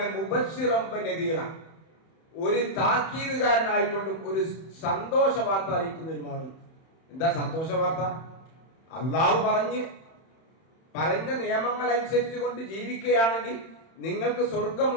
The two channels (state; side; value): late; right; 31 ms